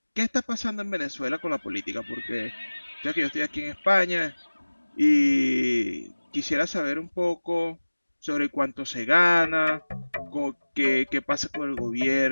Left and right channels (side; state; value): both; inverted; correlation -1.00